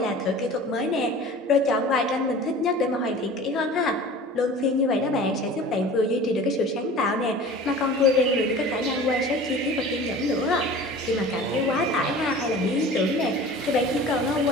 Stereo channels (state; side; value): normal; both; correlation 0.41